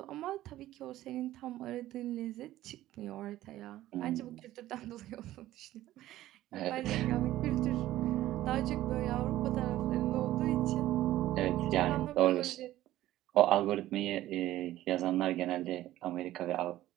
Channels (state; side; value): quieter; left; 14.7 dB